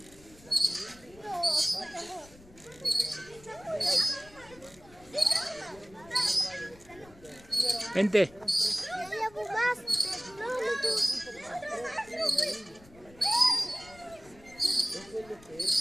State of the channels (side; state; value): left; noise; rumble, 24 dB below the sound